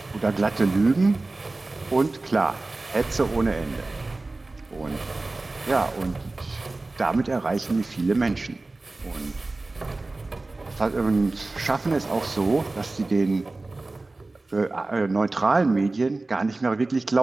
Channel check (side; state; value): left; quieter; 3.2 dB